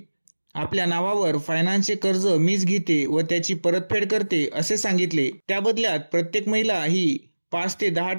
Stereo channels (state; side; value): inverted; both; correlation -1.00